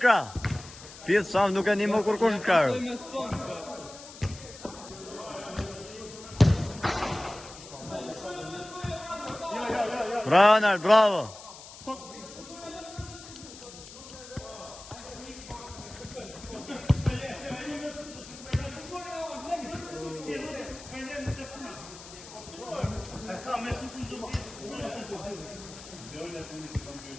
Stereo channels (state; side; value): noise; left; hiss, 16 dB below the sound